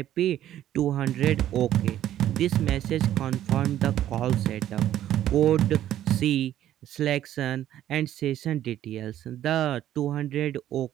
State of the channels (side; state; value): left; quieter; 12.1 dB